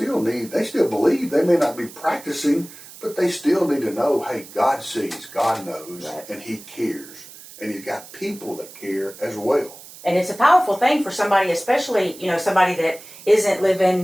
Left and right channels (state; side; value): noise; right; hiss, 18 dB below the sound